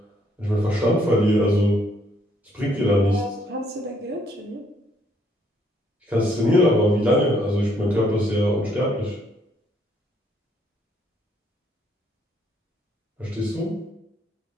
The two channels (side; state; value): both; normal; correlation 0.69